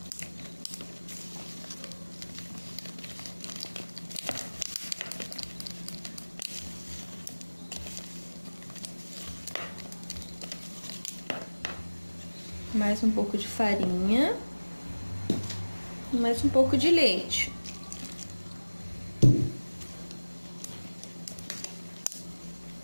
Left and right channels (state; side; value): inverted; both; correlation -1.00